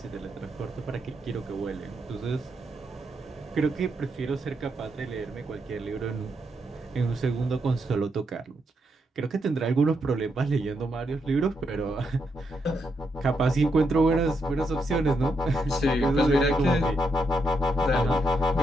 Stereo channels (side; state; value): both; normal; correlation 0.81